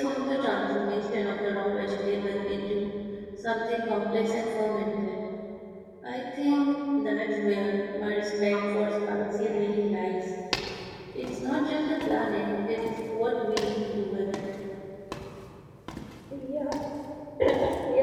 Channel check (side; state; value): both; identical; correlation 1.00